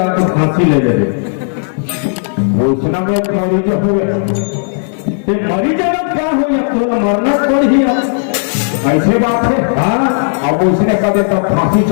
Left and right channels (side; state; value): right; silent; digital silence